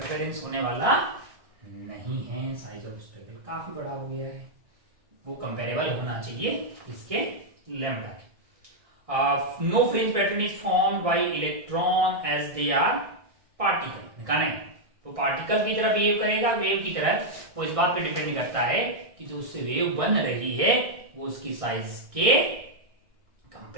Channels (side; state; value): left; late; 1.6 ms